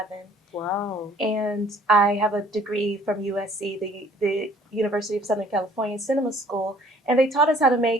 Wow. And I have a degree from USC, the University of Southern California Cinema School, and they taught us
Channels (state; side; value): normal; both; correlation 0.57